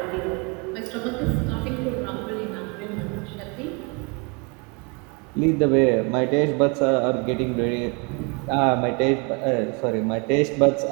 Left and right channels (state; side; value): quieter; left; 32.1 dB